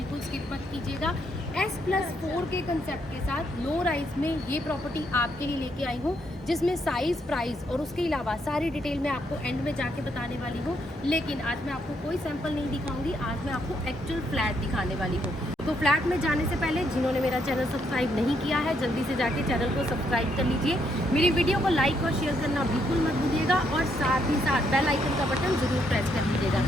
स्किप मत कीजिएगा। S+4 के कंसेप्ट के साथ लो राइज में ये प्रॉपर्टी आपके लिए लेके आई हूँ, जिसमें साइज़, प्राइस और उसके अलावा सारी डिटेल मैं आपको एंड में जाके बताने वाली हूँ। लेकिन आज मैं आपको कोई सैंपल नहीं दिखाऊंगी, आज मैं आपको एक्चुअल फ्लैट दिखाने वाली हूँ। तो फ्लैट में जाने से पहले जिन्होंने मेरा चैनल सब्सक्राइब नहीं किया है, जल्दी से जाके चैनल को सब्सक्राइब कर लीजिए। मेरी वीडियो को लाइक और शेयर करना बिल्कुल मत भूलिएगा और साथ ही साथ बेल आइकन का बटन ज़रूर प्रेस कर लीजिएगा।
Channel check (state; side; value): normal; both; correlation 0.75